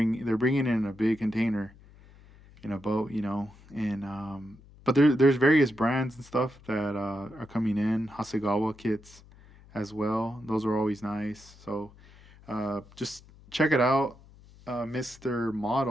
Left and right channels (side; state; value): left; noise; hum, 23 dB below the sound